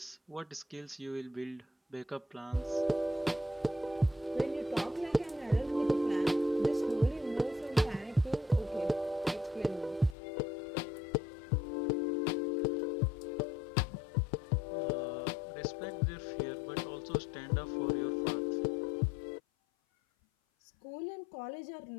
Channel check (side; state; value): right; drops out; at 10.2 s